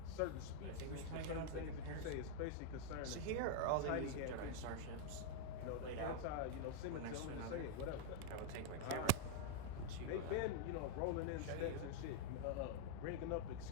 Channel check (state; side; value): different; both; correlation 0.00